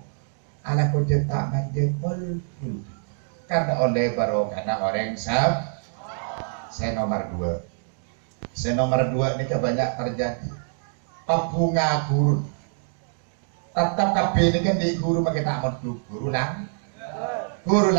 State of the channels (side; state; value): left; silent; digital silence